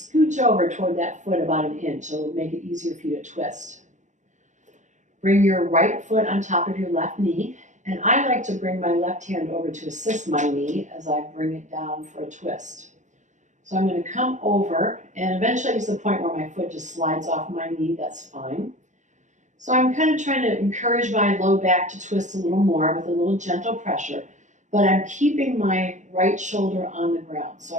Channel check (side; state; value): left; late; 0.35 ms